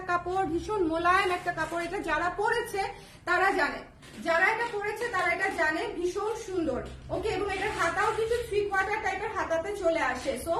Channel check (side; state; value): both; identical; correlation 1.00